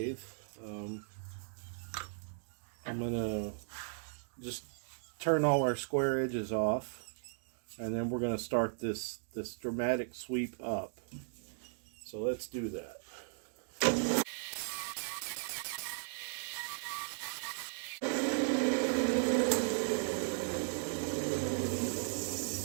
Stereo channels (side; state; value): left; silent; digital silence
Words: I'm gonna just turn all our square edges off, and then we're gonna start this dramatic sweep up. So let's do that.